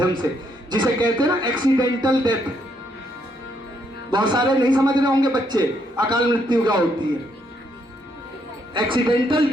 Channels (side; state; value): both; normal; correlation 0.74